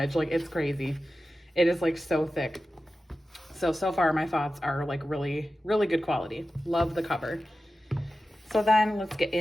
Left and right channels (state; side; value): normal; both; correlation 0.94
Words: Like it's crazy. It is like so thick. So far my thoughts are like really, really good quality. Love the cover. So then let's get